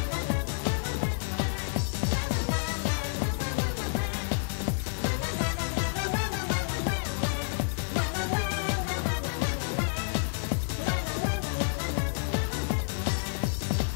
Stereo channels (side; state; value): right; silent; 58 dB below the other